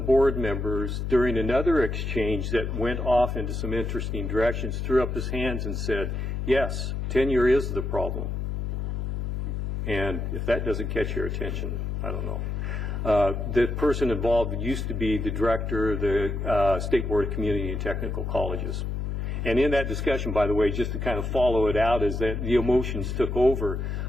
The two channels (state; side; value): noise; left; hum, 3 dB below the sound